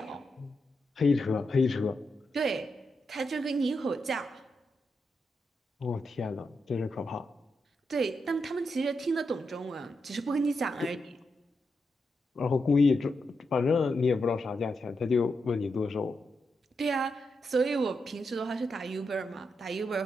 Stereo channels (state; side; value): normal; both; correlation 0.85